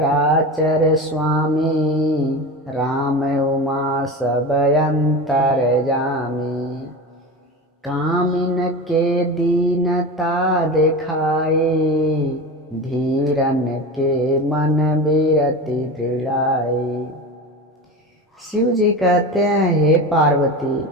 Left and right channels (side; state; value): both; normal; correlation 0.27